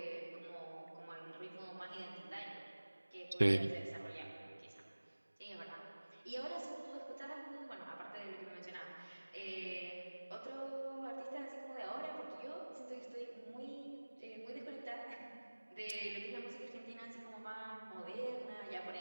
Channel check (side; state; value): both; inverted; correlation -1.00